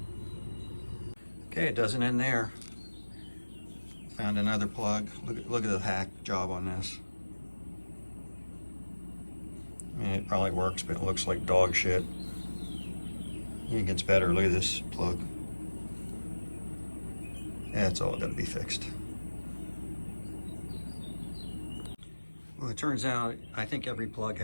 Okay, it doesn't end there. Found another plug. Look at the hack job on this. I mean, it probably works, but it looks like dog shit. It gets better. Look at this plug. That's all got to be fixed. Well, it turns out I think every plug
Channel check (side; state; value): both; inverted; correlation -1.00